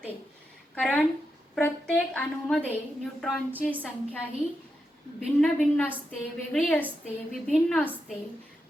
कारण प्रत्येक अणूमध्ये न्यूट्रॉनची संख्या ही भिन्न असते, वेगळी असते, विभिन्न असते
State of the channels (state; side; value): normal; both; correlation 0.86